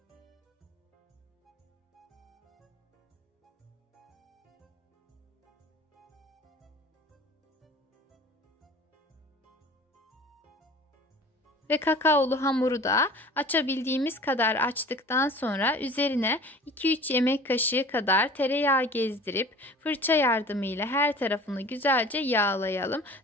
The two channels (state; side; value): normal; both; correlation 0.43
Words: Ve kakaolu hamuru da açabildiğimiz kadar açtıktan sonra üzerine 2-3 yemek kaşığı kadar tereyağı gezdirip fırça yardımıyla her tarafını güzelce yağlayalım.